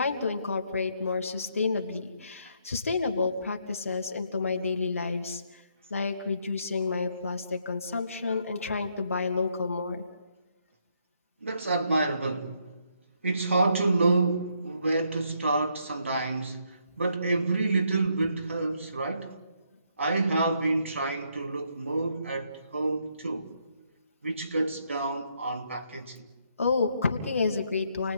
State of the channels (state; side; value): inverted; both; correlation -0.74